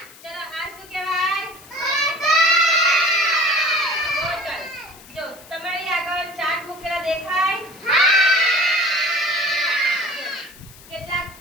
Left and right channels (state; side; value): noise; left; hiss, 21 dB below the sound